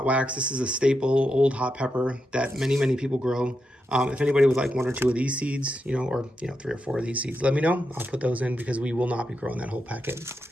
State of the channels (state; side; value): normal; both; correlation 0.85